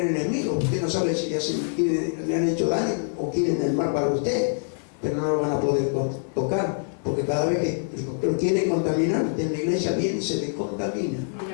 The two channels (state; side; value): silent; right; 58 dB below the other